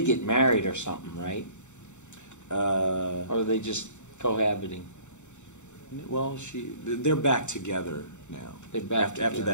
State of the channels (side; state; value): right; late; 0.84 ms